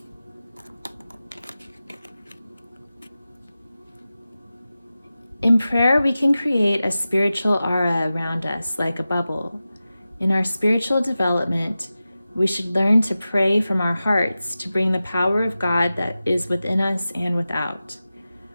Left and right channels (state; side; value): inverted; both; correlation -0.94